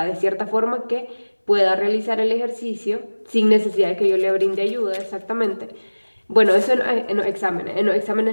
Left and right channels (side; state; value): both; inverted; correlation -1.00